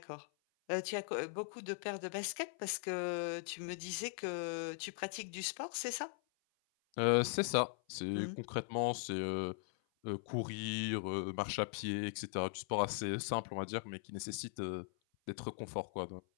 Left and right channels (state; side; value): silent; right; 51 dB below the other